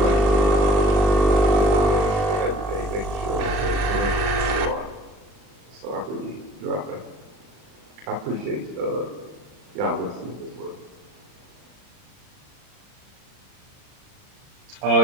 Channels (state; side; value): late; left; 39 ms